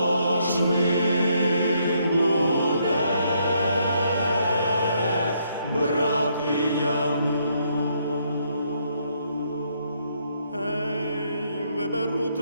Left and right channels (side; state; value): both; inverted; correlation -0.72